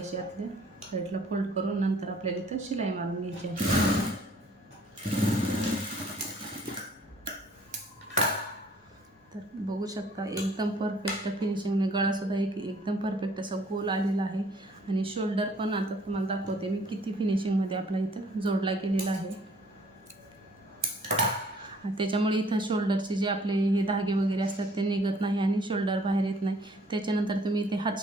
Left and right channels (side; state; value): both; normal; correlation 0.58